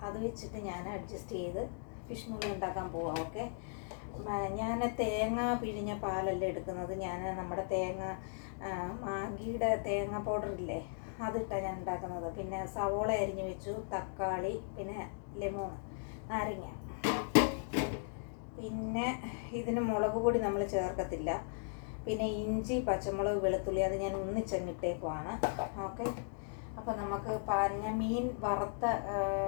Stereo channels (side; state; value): right; silent; digital silence